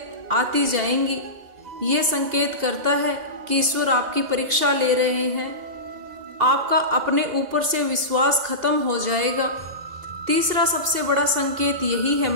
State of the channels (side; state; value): left; late; 2.0 ms